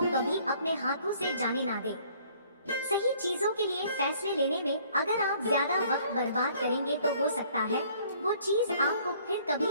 कभी अपने हाथों से जाने ना दें। सही चीजों के लिए फैसले लेने में अगर आप ज्यादा वक्त बर्बाद करेंगे तो हो सकता है वो चीज आपको फिर कभी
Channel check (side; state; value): both; inverted; correlation -0.59